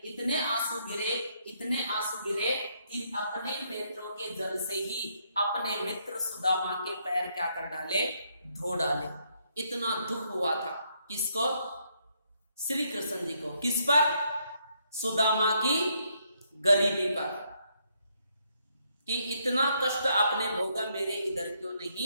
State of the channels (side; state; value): both; inverted; correlation -0.74